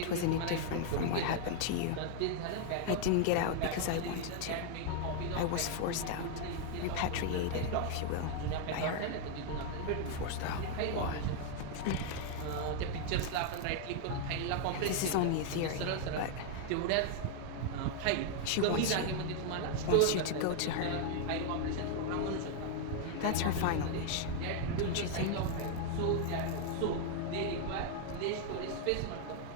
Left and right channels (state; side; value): different; both; correlation 0.00